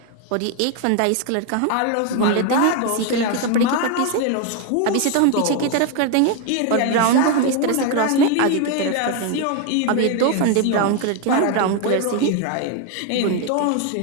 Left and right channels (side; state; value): both; different; correlation 0.01